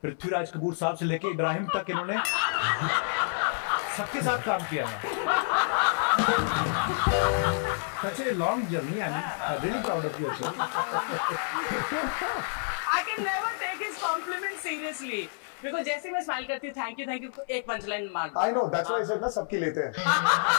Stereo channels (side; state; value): right; silent; 59 dB below the other